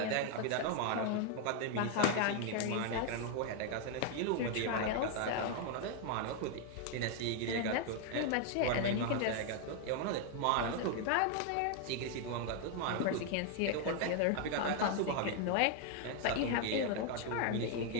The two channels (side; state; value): both; different; correlation 0.01